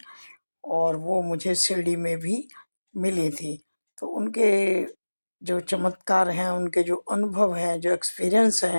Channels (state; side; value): inverted; both; correlation -1.00